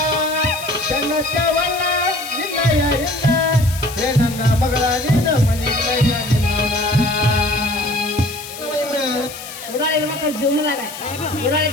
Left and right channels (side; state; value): left; noise; hiss, 13 dB below the sound